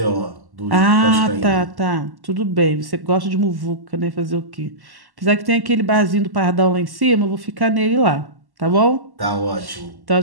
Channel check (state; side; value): late; left; 1.1 ms